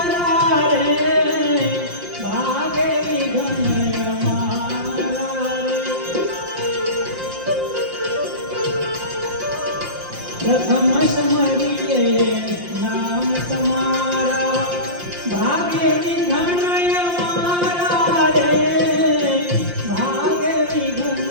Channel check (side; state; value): left; late; 5.7 ms